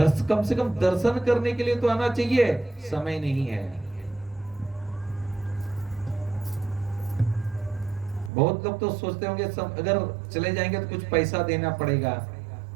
कम से कम दर्शन करने के लिए तो आना चाहिए, समय नहीं है। बहुत लोग तो सोचते होंगे अगर चले जाएंगे तो कुछ पैसा देना पड़ेगा।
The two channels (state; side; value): drops out; left; at 8.3 s